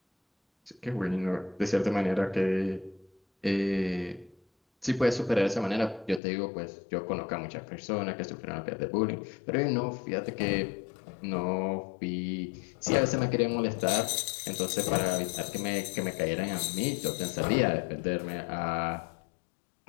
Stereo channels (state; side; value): drops out; right; at 6.2 s